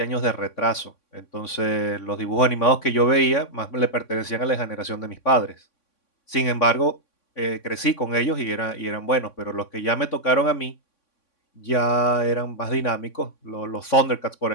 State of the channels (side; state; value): right; late; 3.6 ms